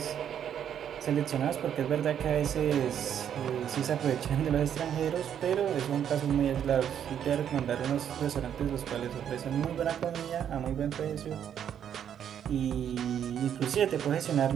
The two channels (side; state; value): left; quieter; 9.2 dB